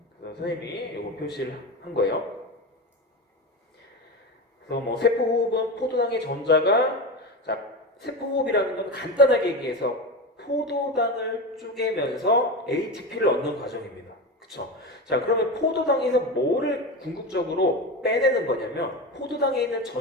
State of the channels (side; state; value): both; normal; correlation 0.22